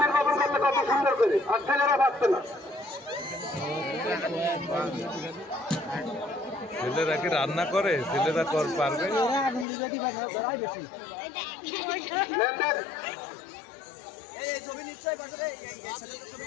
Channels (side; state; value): right; drops out; at 9.7 s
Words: নির্বাপন করলে কত সুন্দর করে আর ছেলেরা পাচ্ছে না ছেলেরা কি রান্না করে ছেলেরা পারবে লেনদেন